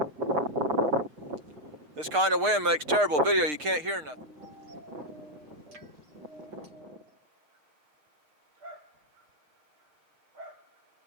This kind of wind makes terrible video. You can't hear nothing.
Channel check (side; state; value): left; late; 6.7 ms